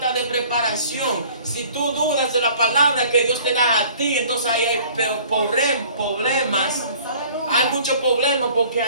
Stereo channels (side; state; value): both; inverted; correlation -0.51